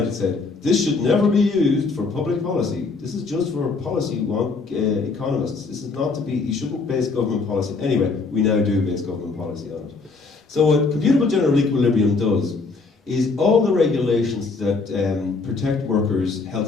it said, this should never be used for public policy. This is just for policy wonk economists. This is not to be, you shouldn't base government policy. Anyway, we now do base government policy on it. So what computable general equilibrium does is all the regulations that protect workers' health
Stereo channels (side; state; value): right; quieter; 4.1 dB